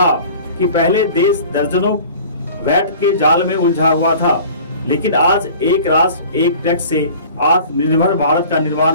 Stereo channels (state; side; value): inverted; both; correlation -0.45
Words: कि पहले देश दर्जनों वैट के जाल में उलझा हुआ था, लेकिन आज एक राष्ट्र एक टैक्स से आत्मनिर्भर भारत का